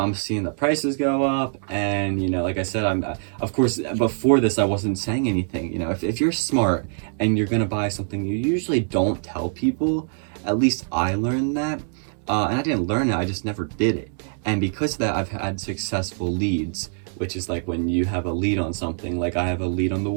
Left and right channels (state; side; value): silent; left; 61 dB below the other